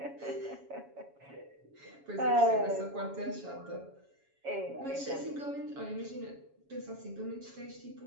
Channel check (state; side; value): late; left; 7.2 ms